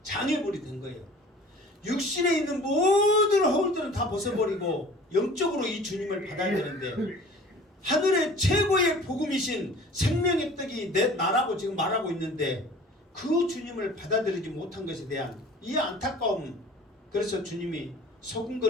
장애물이 된 거예요. 육신에 있는 모든 허울들은 다 벗어버리고 영적으로 이 주님을 받아야 되는데, 하늘의 최고의 복음이신 생명의 떡이 나라고 지금 말하고 있는데 그 주님을 받아들이지 못한 것에 대한 이 안타까움, 그래서 주님이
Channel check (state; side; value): normal; both; correlation 0.45